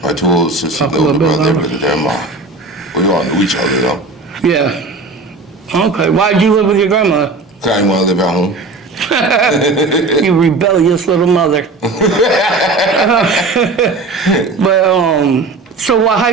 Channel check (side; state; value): left; quieter; 3.6 dB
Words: my 2 older sisters, the older brother, lived with their mom. We all knew each other though. Yeah. Okay. Why'd you live with your grandmother? Cause I didn't want to live at home. You rebellious little mother. But so what